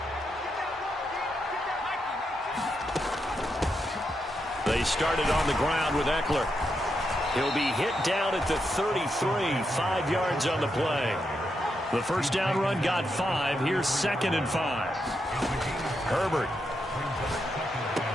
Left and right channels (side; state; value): both; normal; correlation 0.83